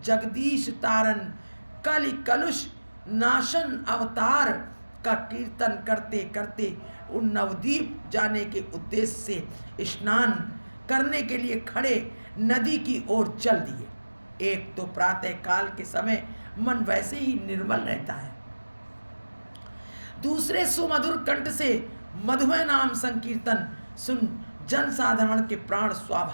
जगदीश तारन कलि कलुष नाशन अवतार का कीर्तन करते करते उन नवदीप जाने के उद्देश्य से स्नान करने के लिए खड़े नदी की ओर चल दिए। एक तो प्रातः काल के समय मन वैसे ही निर्मल रहता है, दूसरे सुमधुर कंठ से मधुमय नाम संकीर्तन सुन जन साधारण के प्राण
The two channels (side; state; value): both; inverted; correlation -1.00